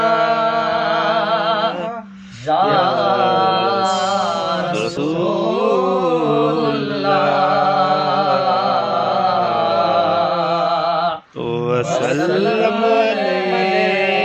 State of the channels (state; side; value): identical; both; correlation 1.00